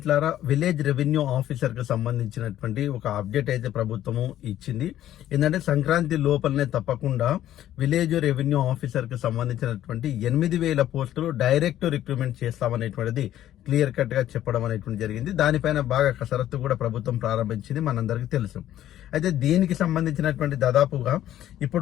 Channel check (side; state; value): right; quieter; 12.4 dB